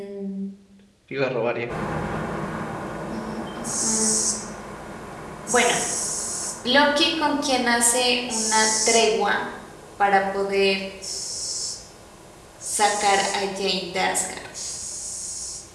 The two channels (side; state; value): both; identical; correlation 1.00